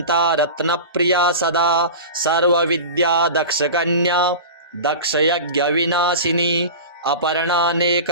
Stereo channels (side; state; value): both; inverted; correlation -0.31